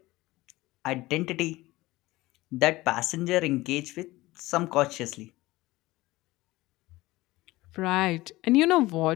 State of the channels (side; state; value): right; quieter; 19.1 dB